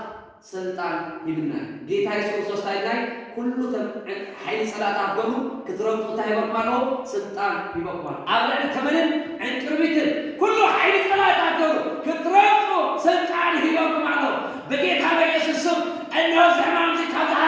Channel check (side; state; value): both; identical; correlation 1.00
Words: ስልጣን ይብና ጌታ ኢየሱስ ክርስቶስ ላይ ኩሉ ኃይል ሰላታ አገሩ ክትረምጡ ታይበቃሎ ስልጣን ይበቃል አብረን ከመንን እንቅርቢትን ኩሉ ኃይል ሰላታ አገሩ ክትረምጡ ስልጣን ይበቃል በጌታ በኢየሱስ ስም እነሆ ዘማን ዝካታ